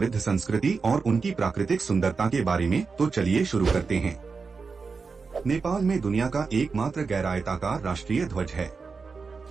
संस्कृति और उनकी प्राकृतिक सुंदरता के बारे में। तो चलिए शुरू करते हैं। नेपाल में दुनिया का एकमात्र गैर-आयताकार राष्ट्रीय ध्वज है।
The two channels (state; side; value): quieter; left; 4.8 dB